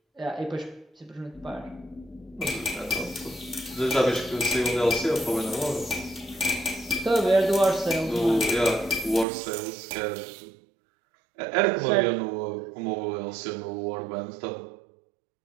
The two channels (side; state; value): left; drops out; at 9.2 s